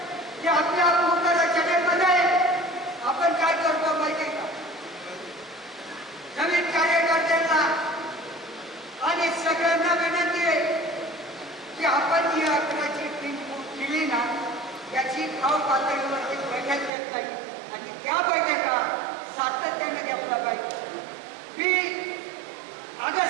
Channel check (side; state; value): left; drops out; at 16.9 s